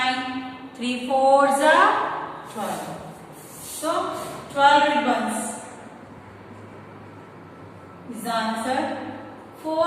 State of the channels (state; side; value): identical; both; correlation 1.00